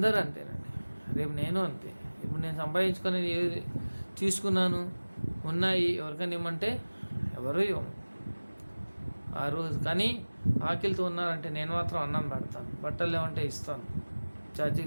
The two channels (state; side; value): inverted; both; correlation -1.00